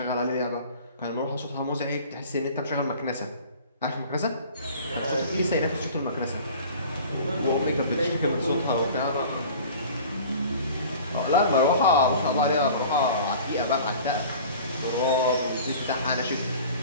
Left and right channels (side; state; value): both; inverted; correlation -0.43